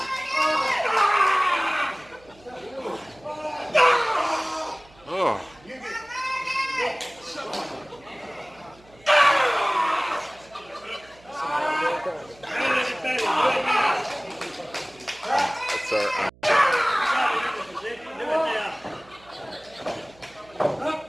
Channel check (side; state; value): right; noise; hum, 27 dB below the sound